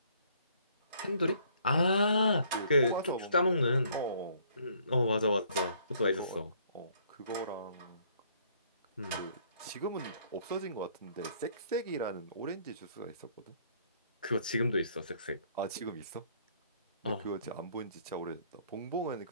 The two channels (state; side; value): inverted; both; correlation -0.63